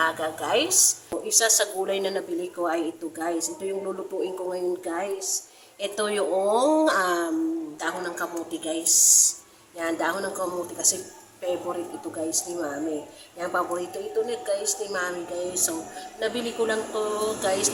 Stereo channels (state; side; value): identical; both; correlation 1.00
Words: guys, isa sa gulay na nabili ko ay ito guys. Ito yung lulutuin ko ngayon guys. Ito yung dahon ng kamuti guys. Yan, dahon ng kamuti kasi favorite ito guys ni Mami. Yan, paborito ito ni guys ni Mami guys. So, nabili ko lang to guys